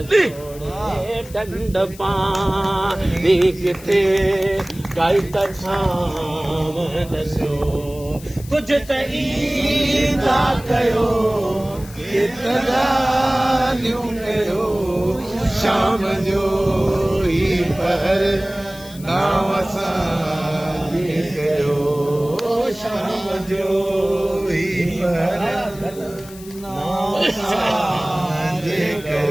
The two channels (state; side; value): noise; left; hiss, 19 dB below the sound